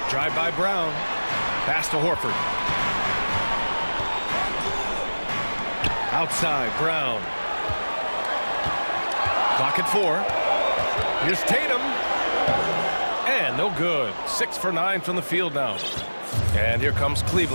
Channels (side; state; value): both; inverted; correlation -1.00